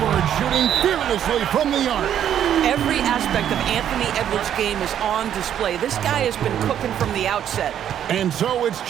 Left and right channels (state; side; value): quieter; left; 10.0 dB